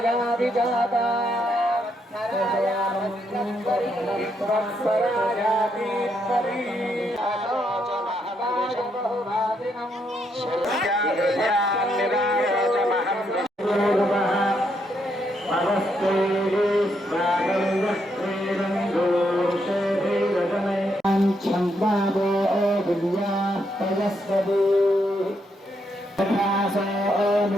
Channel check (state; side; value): normal; both; correlation 0.77